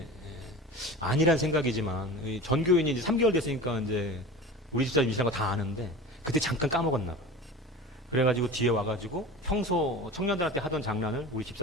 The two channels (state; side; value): normal; both; correlation 0.34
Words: 아니란 생각이지만 전교인이 이제 3개월 됐으니까 이제 우리 집사람 임신한 거 다 아는데 그때 잠깐 까먹었나 봐. 그래가지고 뒤에 와가지고 평소 청년들한테 하던 장난을 우리